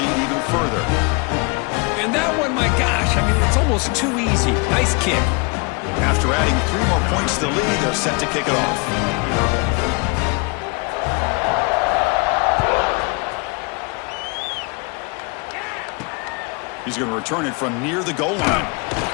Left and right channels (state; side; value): quieter; right; 31.1 dB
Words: even further. And that one, my gosh, I mean, it's almost too easy. Nice kick. After adding 3 more points to the lead, they're set to kick it off. He's going to return it from near the goal line.